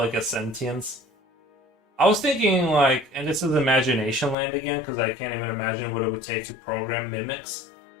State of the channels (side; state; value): right; drops out; at 4.4 s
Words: a sentience. I was thinking like, and this is imagination land again, because I can't even imagine what it would take to program mimics,